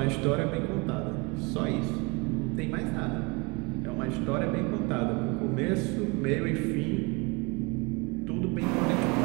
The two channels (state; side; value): quieter; left; 28.5 dB